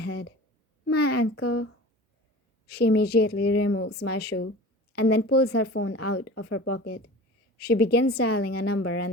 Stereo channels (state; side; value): normal; both; correlation 0.38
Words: My ankle. She immediately removes my shoe and then pulls her phone out of her pocket. She begins dialing a number